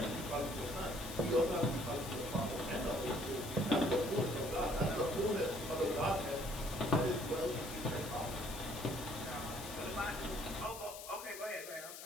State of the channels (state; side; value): noise; left; hiss, 11 dB below the sound